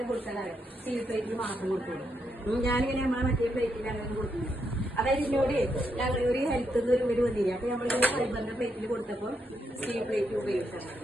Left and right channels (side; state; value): both; normal; correlation 0.80